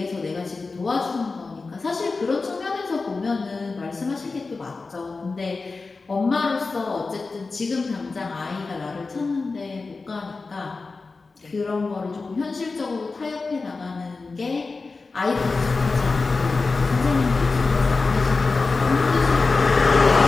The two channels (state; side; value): quieter; right; 4.0 dB